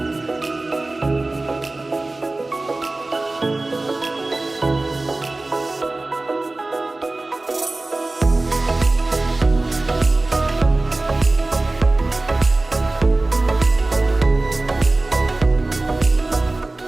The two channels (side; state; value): left; quieter; 3.0 dB